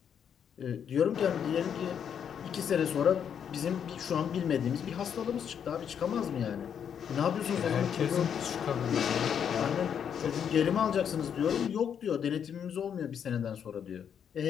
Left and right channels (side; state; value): right; quieter; 8.1 dB